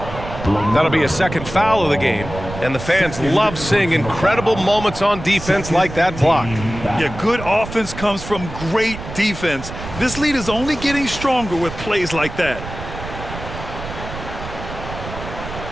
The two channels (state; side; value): noise; right; rumble, 10 dB below the sound